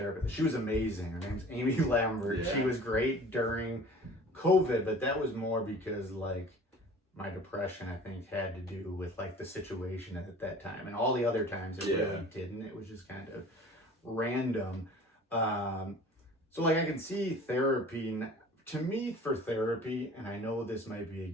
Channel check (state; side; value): normal; both; correlation 0.45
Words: She was amazing. Her name's Amy Lambert. She was great during COVID, but that was more because, like, my depression, I think, had to do with like the situation at that time, and all the other times it really didn't. It was just kind of random. So like, I can see therapy. To me, for therapy, and I know this might be